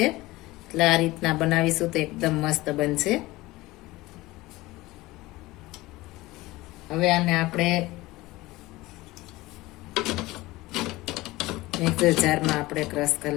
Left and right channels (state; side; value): quieter; right; 19.5 dB